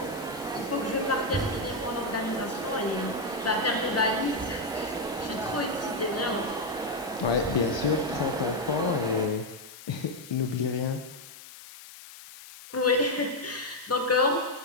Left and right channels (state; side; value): noise; left; hiss, 16 dB below the sound